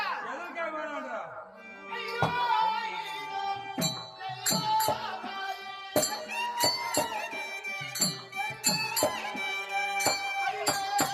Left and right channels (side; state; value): both; identical; correlation 1.00